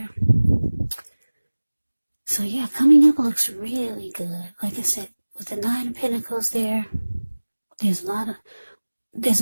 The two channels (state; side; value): inverted; both; correlation -1.00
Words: So yeah, coming up looks really good. Like I said, with the Nine of Pentacles there's a lot of,